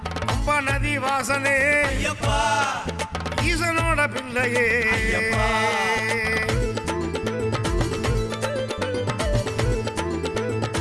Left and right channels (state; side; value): identical; both; correlation 1.00